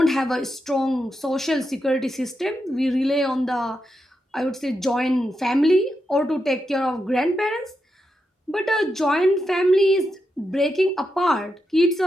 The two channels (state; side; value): normal; both; correlation 0.86